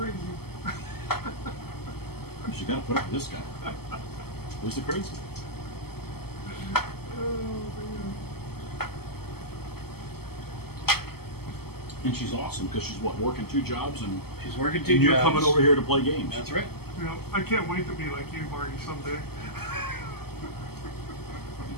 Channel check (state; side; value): late; right; 0.96 ms